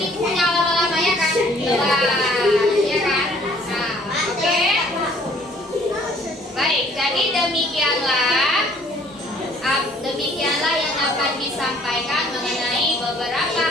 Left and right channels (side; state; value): both; normal; correlation 0.58